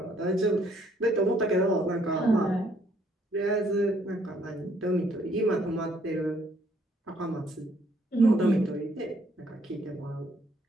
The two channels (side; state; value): both; normal; correlation 0.66